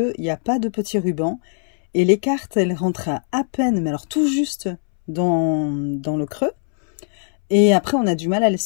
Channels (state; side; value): silent; right; 66 dB below the other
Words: n'y a pas de petit ruban. Et les cartes, elles rentrent à peine, mais alors tout juste dans le creux. Et après, on a du mal à les